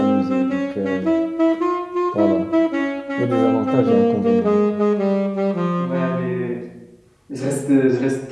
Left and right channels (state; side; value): identical; both; correlation 1.00